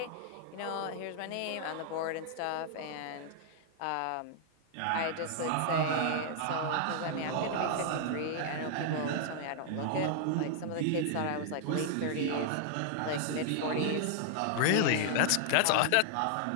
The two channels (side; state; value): both; different; correlation -0.01